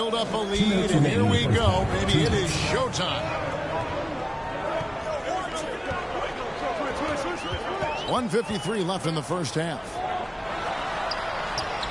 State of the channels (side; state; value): both; identical; correlation 1.00